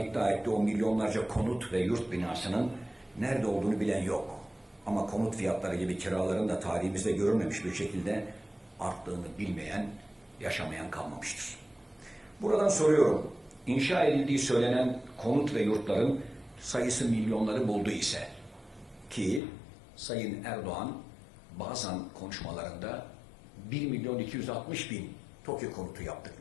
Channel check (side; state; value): right; drops out; at 19.4 s